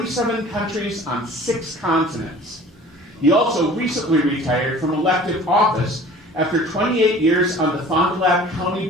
countries on 6 continents. He also recently retired from elective office after 28 years on the Fond du Lac County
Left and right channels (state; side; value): normal; both; correlation 0.46